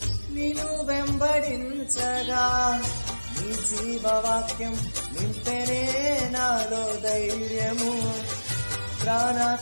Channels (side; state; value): both; inverted; correlation -1.00